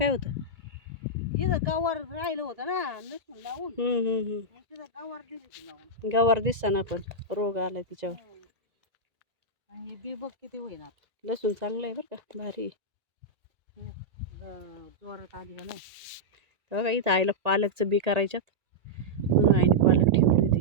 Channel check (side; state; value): left; late; 1.8 ms